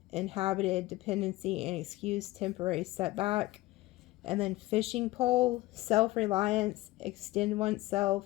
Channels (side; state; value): right; quieter; 18.4 dB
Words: inhabited, dependency, and excuse, temporary setback. And then fishing pole, self-reliance, extend